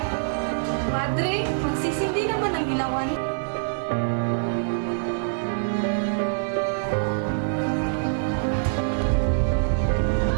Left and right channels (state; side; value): silent; left; digital silence